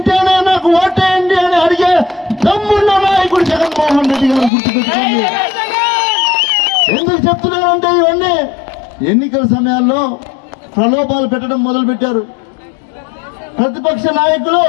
నాకు ఓటేయండి అని అడిగే దమ్మున్న నాయకుడు జగన్మోహన్ రెడ్డి గారు గుర్తుపెట్టుకోండి. ఎందుకు చెప్తున్నానంటే ఇవన్నీ ఎన్నికల సమయాల్లో ప్రలోభాలు పెట్టడం మొదలు పెట్టారు. ప్రతిపక్ష నాయకులు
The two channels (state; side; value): drops out; right; at 4.5 s